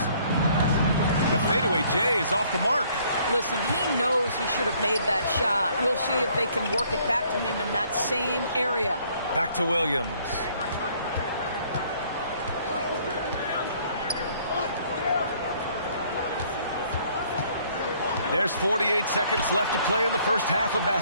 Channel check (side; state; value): both; inverted; correlation -0.62